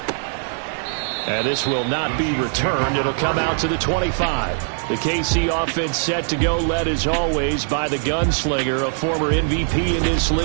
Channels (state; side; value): silent; left; digital silence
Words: And this will not be returned. It'll come out to the 25. The KC offense set to go, led as always by the gunslinger, a former MVP in this